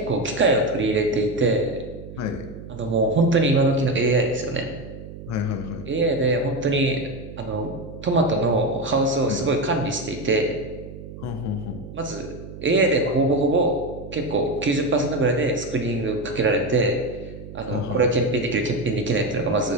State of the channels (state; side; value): noise; right; hum, 13 dB below the sound